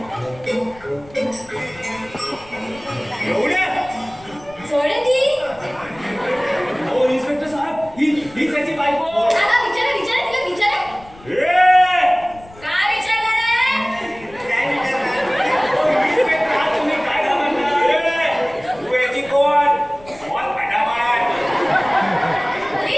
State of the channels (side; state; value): left; noise; rumble, 23 dB below the sound